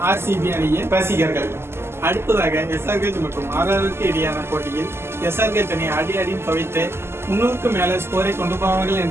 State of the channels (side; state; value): left; late; 0.12 ms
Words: ஆர்சிபி அணியின் ரசிகர்கள். அடுத்ததாக எஸ்ஆர்கேஜ் மற்றும் ஆர்ஆருக்கு இடையான போட்டியில் எஸ்ஆர்கேஜ் அணி அடின்னு துவைத்து 300க்கு மேல ஸ்கோரை கொண்டு போவார்கள்